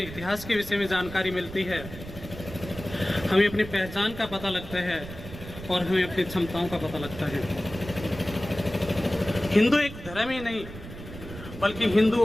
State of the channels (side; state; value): right; noise; rumble, 12 dB below the sound